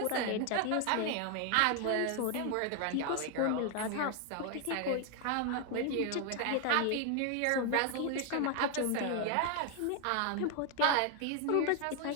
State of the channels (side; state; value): both; different; correlation 0.01